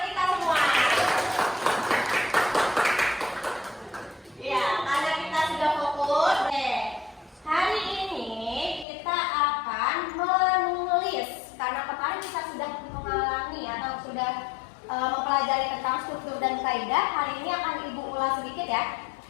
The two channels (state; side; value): drops out; right; at 8.8 s